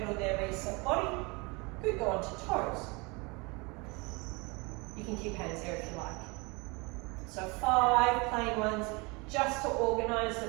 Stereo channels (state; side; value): quieter; left; 27.7 dB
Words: there, reset body. Good, go on to toes. You can keep hands there if you like. So 5 plain ones, just to organize the